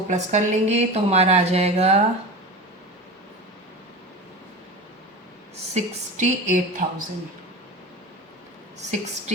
प्लस कर लेंगे तो हमारा आ जाएगा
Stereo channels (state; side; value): normal; both; correlation 0.30